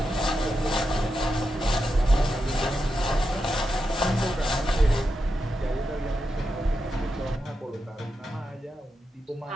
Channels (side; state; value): both; normal; correlation 0.87